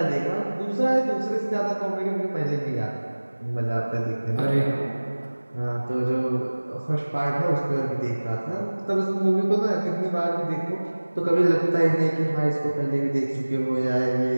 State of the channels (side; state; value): both; inverted; correlation -1.00